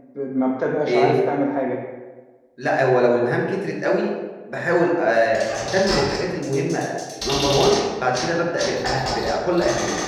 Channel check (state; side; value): identical; both; correlation 1.00